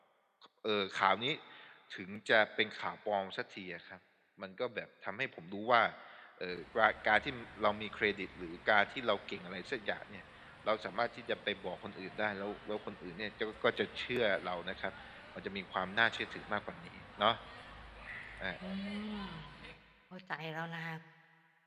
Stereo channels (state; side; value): identical; both; correlation 1.00